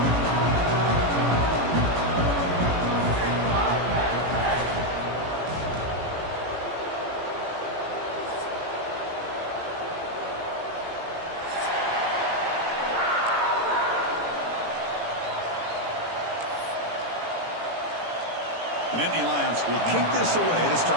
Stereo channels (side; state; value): left; late; 18 ms